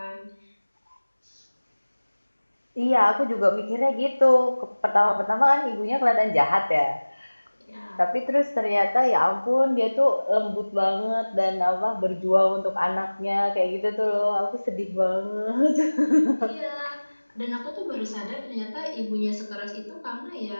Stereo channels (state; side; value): inverted; both; correlation -1.00